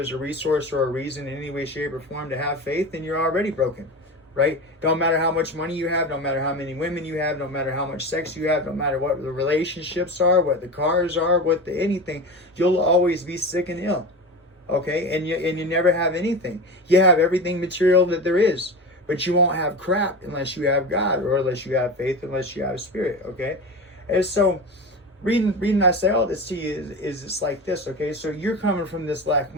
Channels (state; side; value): normal; both; correlation 0.27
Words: a resource or a reason in any way, shape, or form to have faith, then you're already broken, right? Don't matter how much money you have, don't matter how many women you have, don't matter how much sex you have, don't matter what the relationships are, what the cars are, what the anything, you'll always be sick and ill, okay? And you never have anything. You have everything material that there is, but you won't have crap unless you have God, or unless you have faith, unless you have Spirit, okay? And so, reading I say all this to you is it's like this, okay? So you're coming from this lack